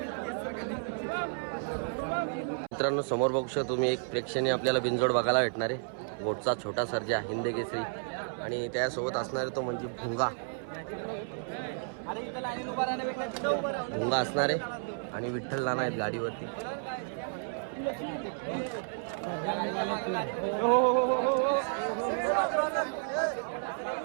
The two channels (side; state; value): left; silent; 57 dB below the other